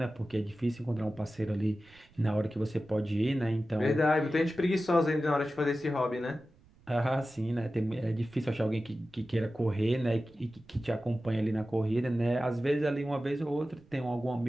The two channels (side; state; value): right; noise; rumble, 28 dB below the sound